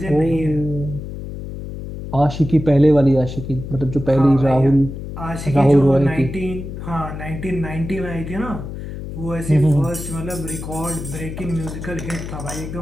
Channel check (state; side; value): noise; left; hum, 9 dB below the sound